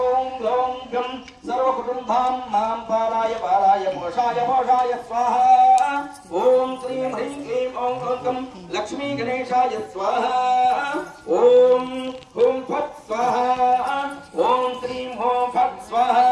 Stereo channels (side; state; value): both; identical; correlation 1.00